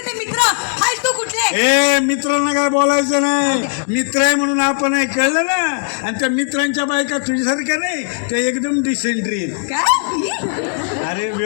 मित्र फालतू कुठले? ए मित्रांना काय बोलायचं नाही. मित्र आहे म्हणून आपण आहे, कळलं ना. आणि त्या मित्रांच्या बायका तुझ्यासारख्या नाही, त्या एकदम डिसेंट्री आहेत. काय? अरे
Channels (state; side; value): silent; right; digital silence